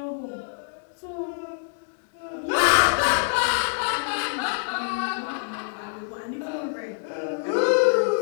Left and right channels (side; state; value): right; silent; digital silence